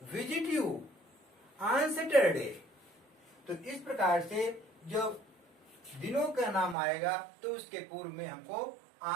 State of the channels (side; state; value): left; drops out; at 6.8 s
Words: visit you on Saturday. तो इस प्रकार से जब दिनों का नाम आएगा तो उसके पूर्व में हमको